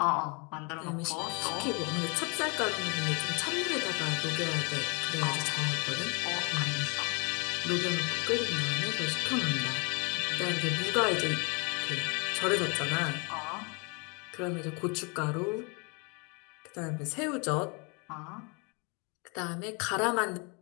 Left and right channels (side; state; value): right; quieter; 32.3 dB